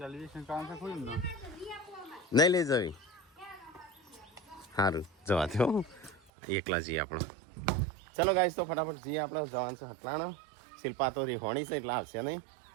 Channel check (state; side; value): drops out; left; at 6.3 s